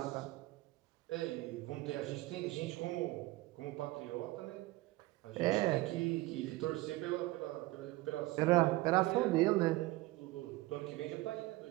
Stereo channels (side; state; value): left; quieter; 19.2 dB